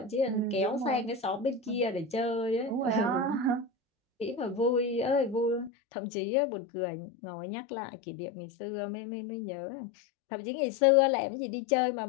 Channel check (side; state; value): right; drops out; at 5.7 s